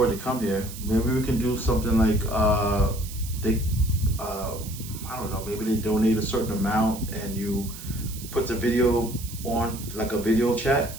to come here, maybe we can do something like I don't know, maybe they donate a certain amount and you put the video on like a video chat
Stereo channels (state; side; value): noise; right; hiss, 13 dB below the sound